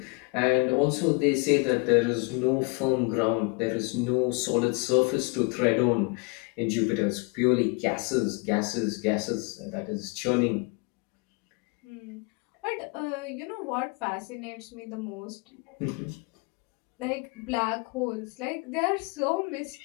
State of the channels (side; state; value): right; quieter; 31.3 dB